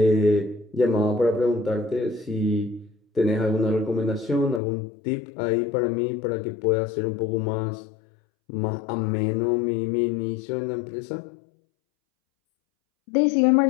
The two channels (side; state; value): right; drops out; at 4.6 s